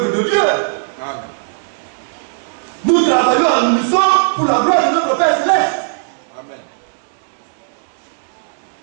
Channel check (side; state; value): left; silent; digital silence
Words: de Dieu. Amen. Nous travaillons en unisson pour la gloire de notre Père Céleste. Amen.